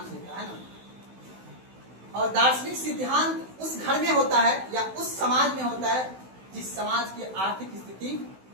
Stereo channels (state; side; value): late; left; 16 ms